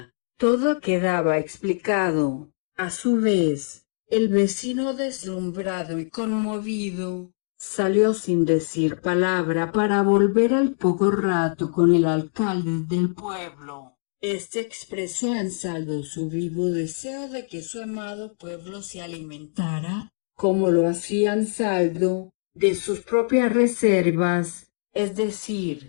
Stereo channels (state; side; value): silent; right; digital silence